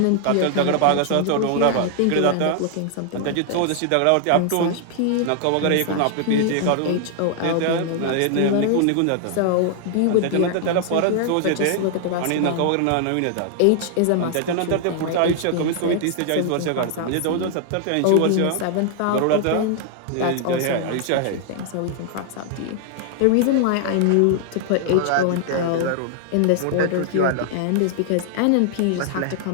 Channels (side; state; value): both; different; correlation 0.00